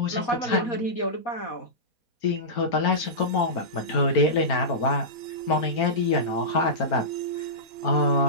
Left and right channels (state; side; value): late; right; 4.4 ms